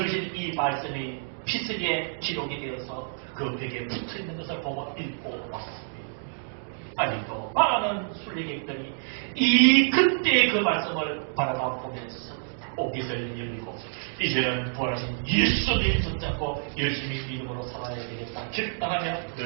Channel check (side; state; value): left; silent; digital silence